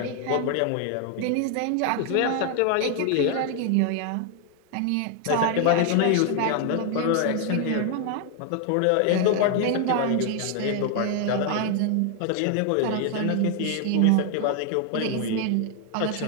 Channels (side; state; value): both; different; correlation 0.00